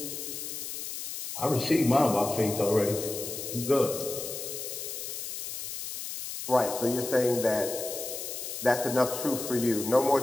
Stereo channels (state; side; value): noise; left; hiss, 7 dB below the sound